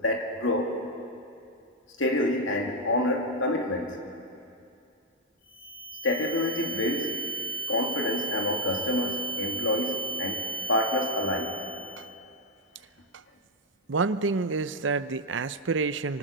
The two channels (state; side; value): normal; both; correlation 0.02